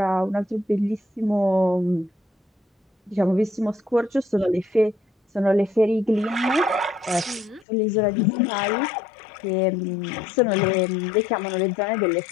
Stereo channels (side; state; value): right; drops out; at 7.7 s